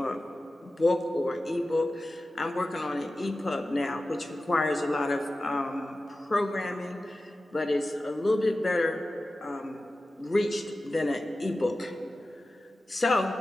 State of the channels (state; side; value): normal; both; correlation 0.94